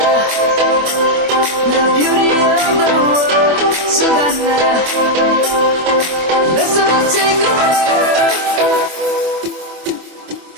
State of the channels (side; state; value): left; late; 24 ms